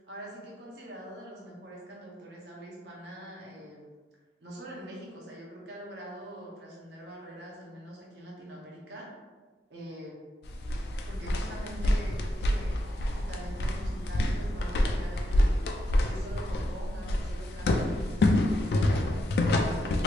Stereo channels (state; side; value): normal; both; correlation 0.83